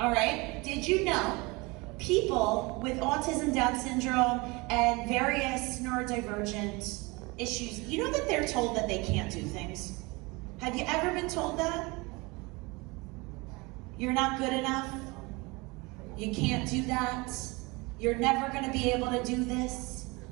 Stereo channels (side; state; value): left; quieter; 25.3 dB